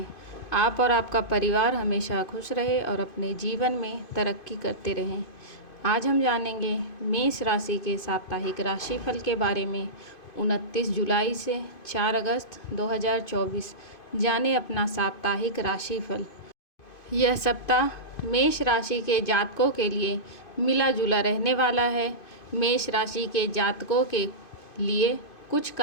आप और आपका परिवार हमेशा खुश रहे और अपने जीवन में तरक्की करते रहें। आज हम जानेंगे मेष राशि के साप्ताहिक राशिफल के बारे में। 29 जुलाई से 4 अगस्त 2024 जाने अपना साप्ताहिक राशिफल। यह सप्ताह मेष राशि के जातकों के लिए मिला जुला रहने वाला है। मेष राशि के जातकों के लिए कुछ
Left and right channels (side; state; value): right; late; 2.5 ms